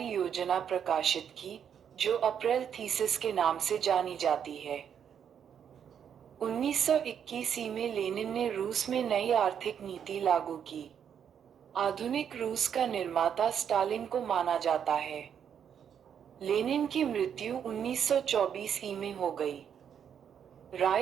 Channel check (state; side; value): quieter; left; 8.3 dB